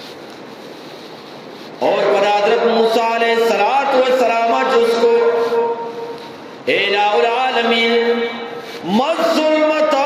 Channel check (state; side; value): identical; both; correlation 1.00